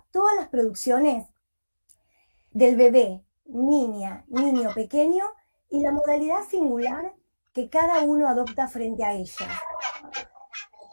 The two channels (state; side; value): inverted; both; correlation -1.00